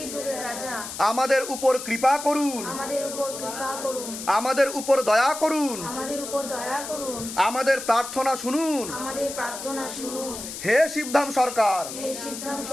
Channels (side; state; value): left; noise; hiss, 9 dB below the sound